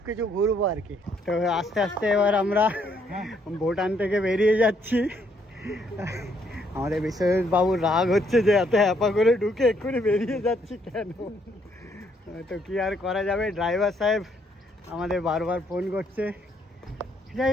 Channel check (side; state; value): both; normal; correlation 0.70